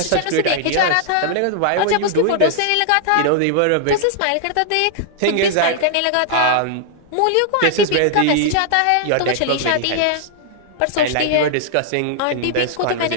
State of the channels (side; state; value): both; different; correlation -0.01